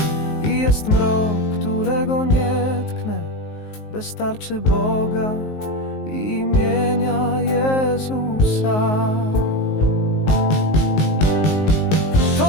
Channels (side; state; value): right; late; 19 ms